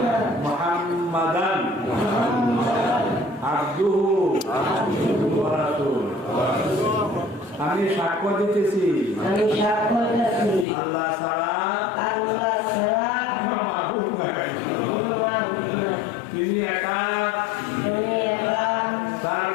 মুহাম্মাদান আবদুহু ওয়া রাসূলুহু। আমি সাক্ষ্য দিতেছি আল্লাহ ছাড়া মাবুদ নাই, তিনি একা, তার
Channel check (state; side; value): drops out; right; at 10.7 s